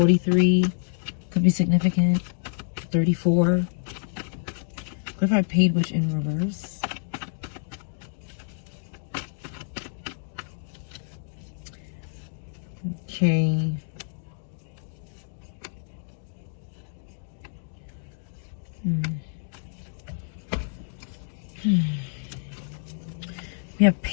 Could be significant. 34. Clarified paid witch in reverse. Okay. We have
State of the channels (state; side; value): silent; right; digital silence